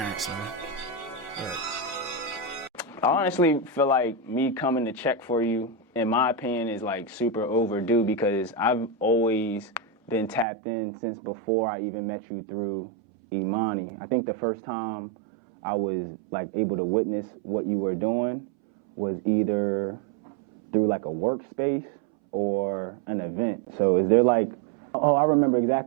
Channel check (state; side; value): drops out; left; at 10.5 s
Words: man. I honestly feel like me coming to check for you, in my opinion, is like super overdue because I've always been tapped in since before I even met you through Imani. I think the first time I was like able to witness what you were doing was either through like a workspace or an event. So is there like, oh, I remember